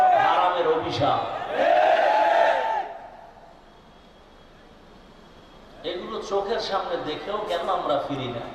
হারামের অভিশাপ। চোখের সামনে দেখেও কেন আমরা ফিরি না?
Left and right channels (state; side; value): identical; both; correlation 1.00